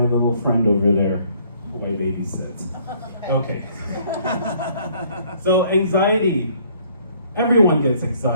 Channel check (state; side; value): inverted; both; correlation -0.62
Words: little friend over there who I babysit. Okay. So anxiety, everyone gets